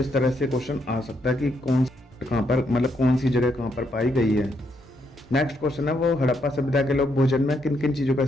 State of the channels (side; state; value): both; normal; correlation 0.76